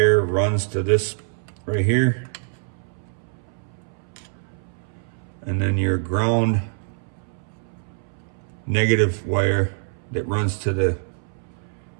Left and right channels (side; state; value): left; silent; 62 dB below the other